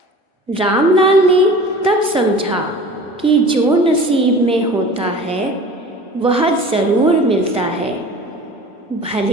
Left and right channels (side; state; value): both; normal; correlation 0.41